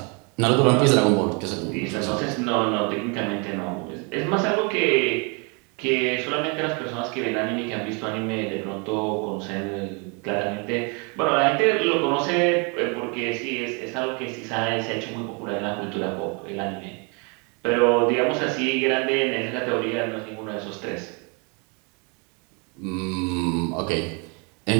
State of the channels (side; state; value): left; quieter; 33.6 dB